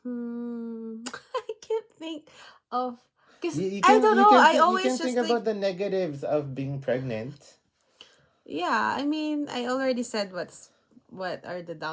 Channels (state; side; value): identical; both; correlation 1.00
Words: I can't think of, because You I can don't know. I you always can think just think. about the negatives of being pregnant. Yeah, I mean, I already said what are the